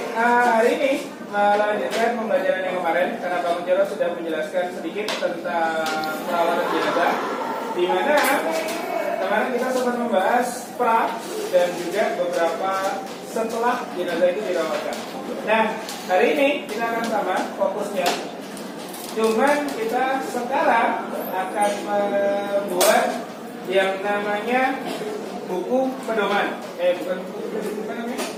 hari ini melanjutkan pembelajaran yang kemarin karena Pak Mujaro sudah menjelaskan sedikit tentang perawatan jenazah, di mana kemarin kita sempat membahas pra dan juga beberapa setelah jenazah itu dirawatkan. Nah, hari ini kita akan sama fokusnya. Cuman kita sekarang akan membuat yang namanya buku pedoman. Bukan buku, apa namanya?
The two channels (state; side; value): identical; both; correlation 1.00